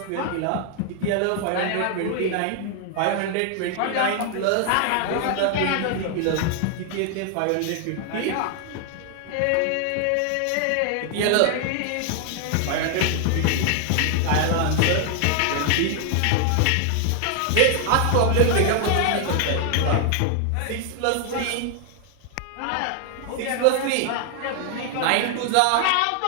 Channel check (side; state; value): both; different; correlation 0.00